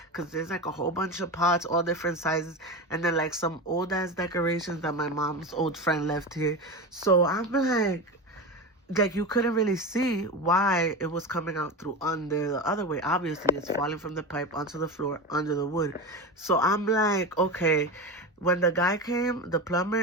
because there's like a whole bunch of pots, all different sizes, and then like some old ass decorations that my mom's old friend left here. So I'm like you couldn't really see why it was coming out through under the other way. Obviously it's falling from the pipe onto the floor under the wood. So I'm like, okay. When the guy came, the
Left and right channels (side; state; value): both; normal; correlation 0.23